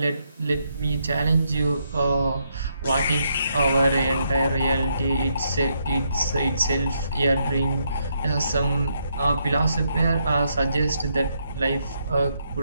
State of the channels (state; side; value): inverted; both; correlation -0.77